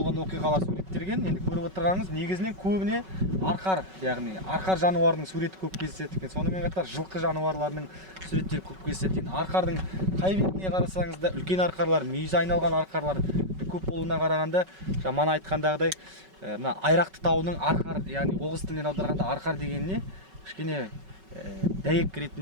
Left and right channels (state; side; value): late; left; 5.3 ms